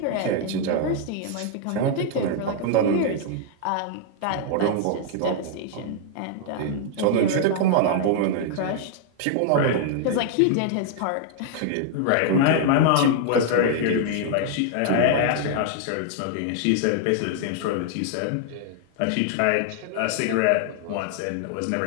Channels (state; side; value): different; both; correlation 0.00